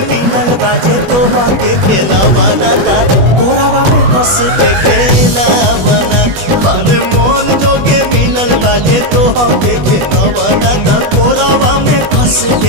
मिलल बाजे तोहा के खेला बना ता कोरावा में कस के खेला बना अरे मन जोगे मिलल बाजे तोहा के खेला बना ता कोरावा में कस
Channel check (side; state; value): left; late; 21 ms